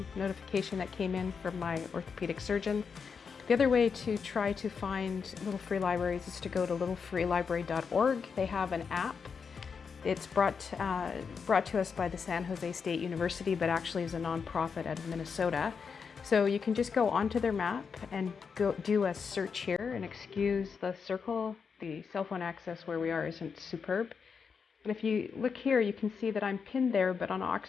notification that came in from my orthopedic surgeon. The other way to try to find little free libraries is to go to littlefreelibrary.org. They have an app. It's brought to us by the San Jose State University, but actually is a nonprofit out of Minnesota. So you can just go onto their map and go do a search here, and excuse the circle. The cell phone access where we are isn't superb. And if you look here, you can see that I'm pinned there, but on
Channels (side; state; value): right; quieter; 5.9 dB